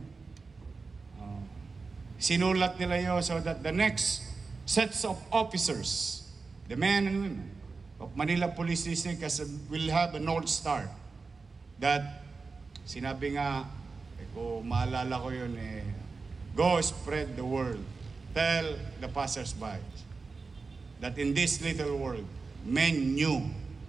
Sinulat nila yun so that the next sets of officers, the men and women of Manila Police District will have a North Star. That, sinabi nga, kung maalala ko yun, go spread the word. Tell the passers-by that in this little world, men knew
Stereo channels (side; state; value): left; quieter; 4.3 dB